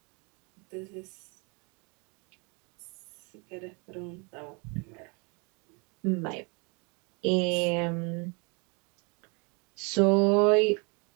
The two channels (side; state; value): left; quieter; 33.0 dB